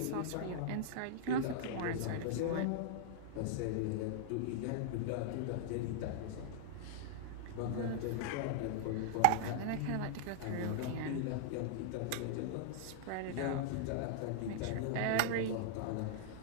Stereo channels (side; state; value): both; different; correlation -0.01